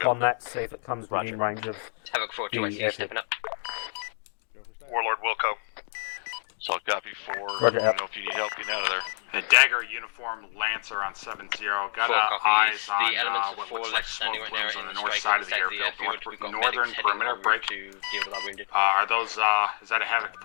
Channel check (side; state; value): right; silent; digital silence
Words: on that, see if it comes within range of Havoc 4 the 2 I see you airfield? stepping up. Warlord Wilco. Solid copy 4. Roger, Let me know if you need help getting out of there. The Dagger uniform Lancer on 7-0. Got 4 eyes copies. on The elements of what 4 looks like left smoke standing right now plumes on in the the north strike side of the inside the airfield. airfield. We've got Northern medics heading perimeter over break. to deal with our wounded. Are those, is that a Havoc